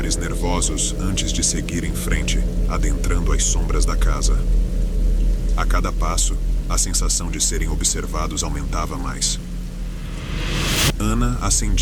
nervosos antes de seguir em frente, adentrando as sombras da casa. A cada passo, a sensação de serem observados aumentava mais. Ana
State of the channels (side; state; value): both; identical; correlation 1.00